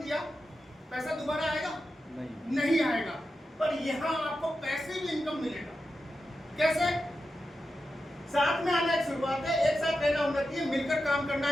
दिया, पैसा दोबारा आएगा? नहीं आएगा। पर यहाँ आपको पैसे भी इनकम मिलेगा। कैसे? साथ में आना एक शुरुआत है, एक साथ रहना उन्नति है, मिलकर काम करना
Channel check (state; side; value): normal; both; correlation 0.90